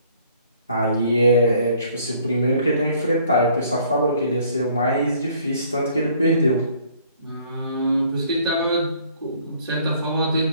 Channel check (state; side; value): inverted; both; correlation -0.60